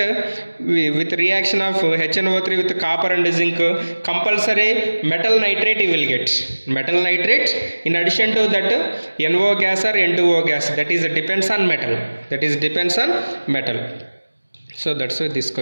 with reaction of HNO3 with copper and zinc? Compulsory metal nitrate you will get. Metal nitrate, in addition to that NO gas or N2O gas, that is depends on metal. That is depends on metal. So that's why this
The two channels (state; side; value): inverted; both; correlation -1.00